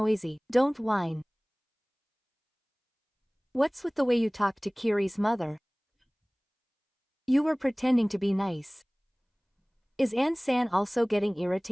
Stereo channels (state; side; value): identical; both; correlation 1.00